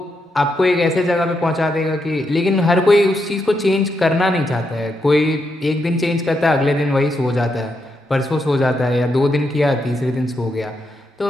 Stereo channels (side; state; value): both; normal; correlation 0.82